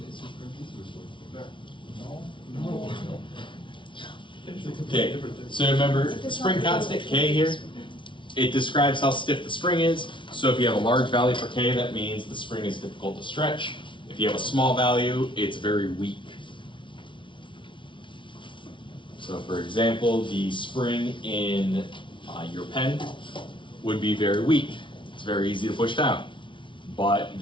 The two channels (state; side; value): late; right; 0.24 ms